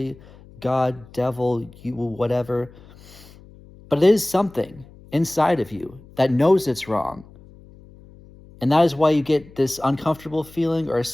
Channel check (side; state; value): left; noise; hum, 23 dB below the sound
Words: God, devil, you, whatever. But it is something inside of you that knows it's wrong. And that is why you get this uncomfortable feeling or a